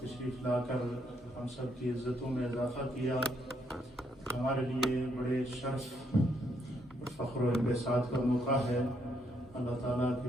تشریف لا کر ہم سب کی عزتوں میں اضافہ کیا. ہمارے لیے بڑے شرف اور فخر و انبساط کا موقع ہے. اللہ تعالیٰ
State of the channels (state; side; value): normal; both; correlation 0.74